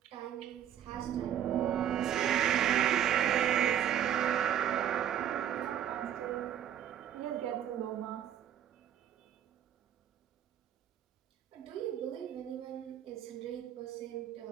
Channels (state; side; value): quieter; left; 10.1 dB